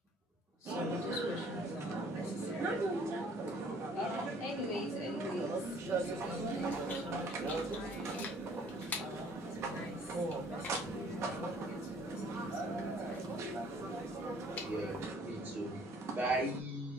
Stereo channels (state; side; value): normal; both; correlation 0.57